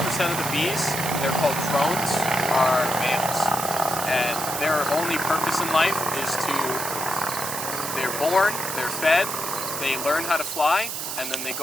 of the bees, they're called drones, are males. And their only purpose in life is they're born, they're fed, they learn how to fly, and then they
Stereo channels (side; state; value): right; noise; hiss, 4 dB below the sound